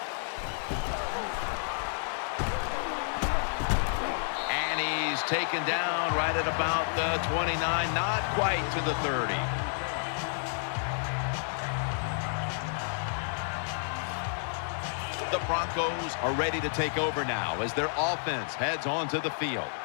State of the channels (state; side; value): silent; right; 58 dB below the other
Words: Taken down right at about the 29, not quite to the 30. The Broncos are ready to take over now as their offense heads onto the field.